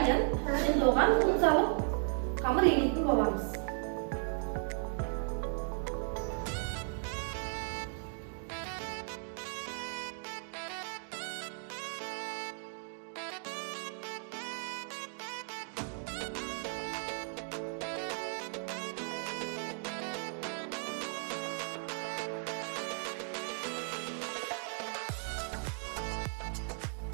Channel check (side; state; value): left; silent; 54 dB below the other